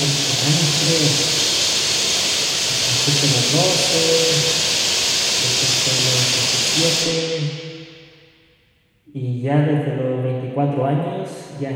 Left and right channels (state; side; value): identical; both; correlation 1.00